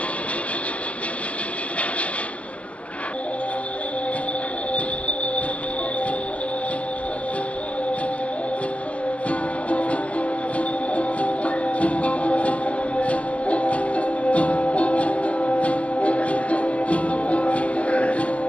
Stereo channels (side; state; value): right; late; 0.063 ms